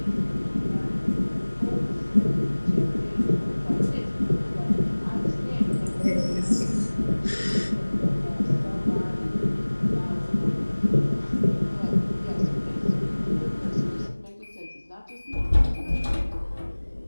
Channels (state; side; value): inverted; both; correlation -1.00